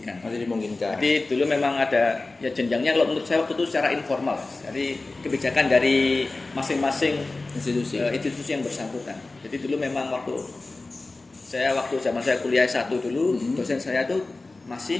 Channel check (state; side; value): quieter; right; 3.3 dB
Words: Jadi dulu memang ada ya jenjangnya, kalau menurut saya waktu itu secara informal. Jadi kebijakan dari masing-masing institusi yang bersangkutan. Jadi dulu memang waktu zaman saya kuliah S1 dulu, dosen saya tuh masih